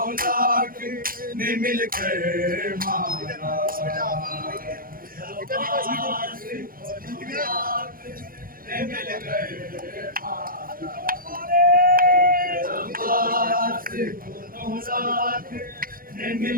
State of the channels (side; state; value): left; late; 0.41 ms